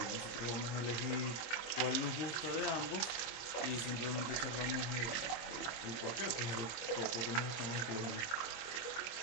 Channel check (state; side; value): late; right; 25 ms